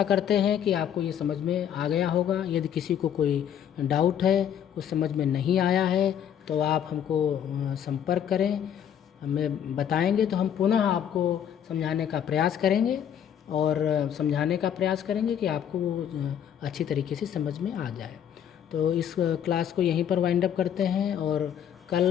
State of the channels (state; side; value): quieter; right; 9.3 dB